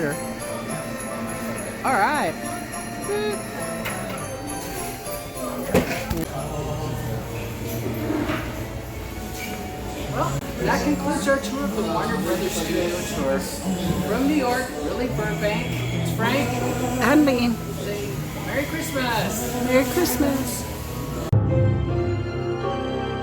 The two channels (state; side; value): identical; both; correlation 1.00